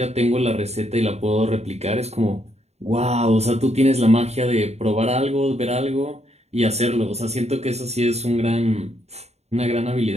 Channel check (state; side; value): late; left; 0.31 ms